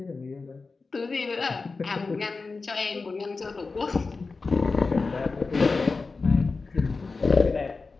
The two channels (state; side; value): quieter; right; 4.1 dB